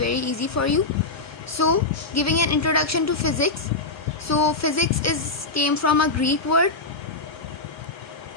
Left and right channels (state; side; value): quieter; right; 3.5 dB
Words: easy for you. So, giving an introduction to physics. So, physics came from a Greek word